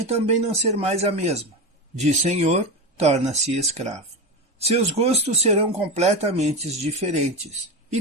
também não ser mais a mesma. De senhor, torna-se escravo. Seus gostos serão completamente diferentes e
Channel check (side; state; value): both; normal; correlation 0.19